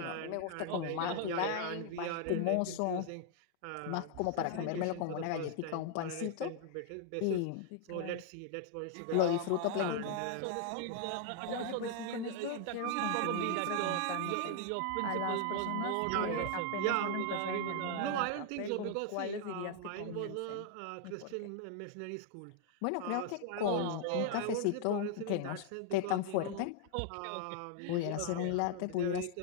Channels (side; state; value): both; different; correlation 0.00